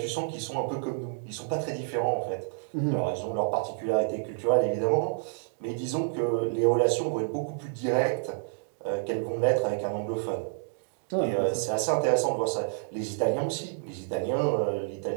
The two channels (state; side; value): silent; left; digital silence